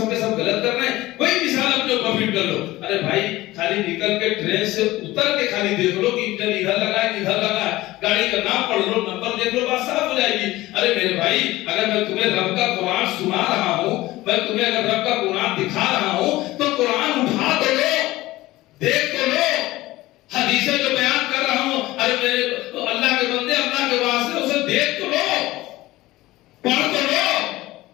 کے سب غلط کر رہے ہیں، کوئی مثال اپنے اوپر فٹ کر لو۔ ارے بھائی خالی نکل کے ٹرین سے اتر کے خالی دیکھ لو کہ انجن ادھر لگا ہے ادھر لگا ہے، گاڑی کا نام پڑھ لو، نمبر دیکھ لو، بات صاف ہو جائے گی۔ ارے میرے بھائی اگر میں تمہیں رب کا قرآن سنا رہا ہوں، میں تمہیں اگر رب کا قرآن دکھا رہا ہوں تو قرآن اٹھا تو لو، دیکھ تو لو، حدیثیں جو بیان کر رہا ہوں، ارے میرے اللہ کے بندے اللہ کے واسطے اسے دیکھ تو لو، پڑھ تو لو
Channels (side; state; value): right; quieter; 17.9 dB